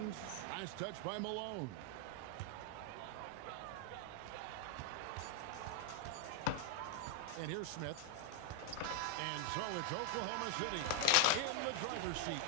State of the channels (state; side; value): different; both; correlation 0.00